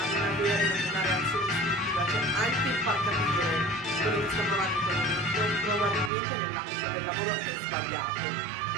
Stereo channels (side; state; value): left; drops out; at 6.1 s